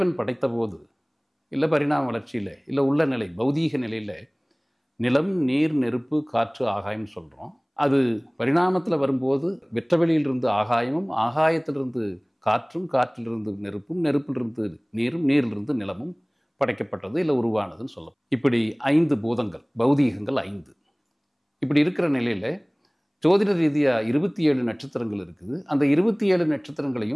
படைத்த போது இல்லை பரிணாம வளர்ச்சியில் இல்லை உள்ள நிலை பௌதீக நிலையில் நிலம், நீர், நெருப்பு, காற்று, ஆகாயம்னு சொல்கிறோம். அது பரிணாமத்தில் வரும்போது வெற்றவெளியிலிருந்து ஆகாயமும், ஆகாயத்திலிருந்து காற்றும், காற்றிலிருந்து நெருப்பும், நெருப்பிலிருந்து நீரும், நீரிலிருந்து நிலமும் படைக்கப்பட்டது இல்லை உருவானதுன்னு சொல்லலாம். இப்படி 5 பூதங்கள், பௌதீகங்கள் 5. இப்படி இருக்கிற நிலையில் ஜோதிட ரீதியாக 27 நட்சத்திரங்கள் இருக்குது. அந்த 27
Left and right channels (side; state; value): both; identical; correlation 1.00